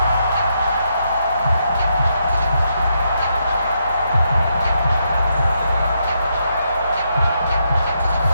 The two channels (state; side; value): inverted; both; correlation -0.79